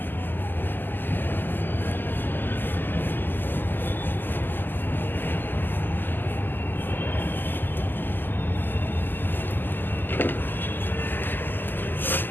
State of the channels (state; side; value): late; right; 0.091 ms